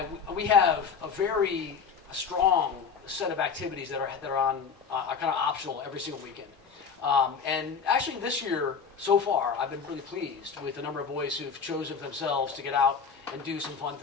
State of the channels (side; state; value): right; quieter; 6.0 dB